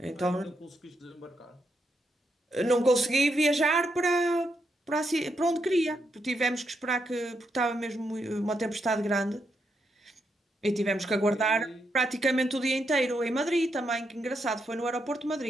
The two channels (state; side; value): normal; both; correlation 0.81